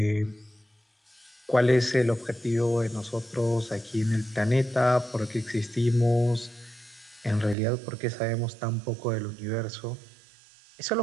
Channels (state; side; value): drops out; left; at 7.6 s